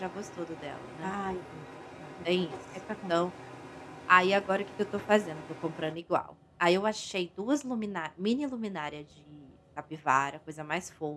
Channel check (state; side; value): identical; both; correlation 1.00